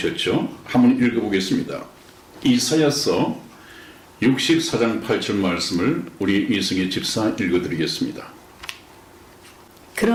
한번 읽어보겠습니다. 이사야서 64장 8절 말씀을 우리 이승희 집사 읽어드리겠습니다.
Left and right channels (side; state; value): both; identical; correlation 1.00